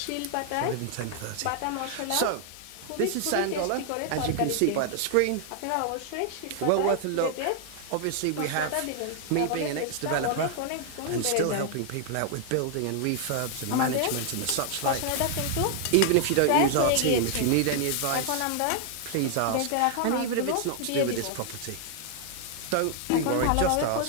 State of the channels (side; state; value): both; different; correlation 0.00